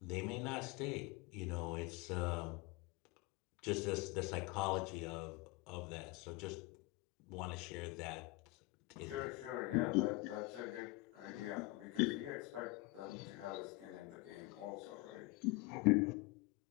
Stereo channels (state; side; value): quieter; right; 22.5 dB